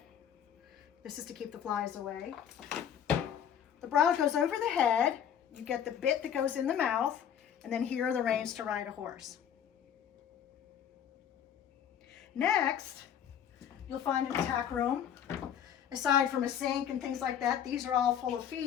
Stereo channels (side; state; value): right; quieter; 9.0 dB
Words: This is to keep the flies away. The bridle goes over the head. You get the bit that goes in the mouth, and then here are the reins to ride a horse. Next, you'll find in the tack room, aside from a sink and things like that, these are all full of